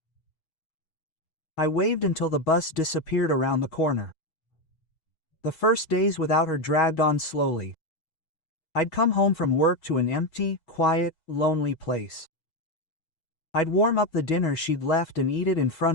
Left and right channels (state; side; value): late; right; 6.2 ms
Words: I waved until the bus disappeared around the corner. The first days without her dragged on slowly. I'd come home from work to an empty, quiet, lonely place. I'd warm up the dinner she'd left and eat it in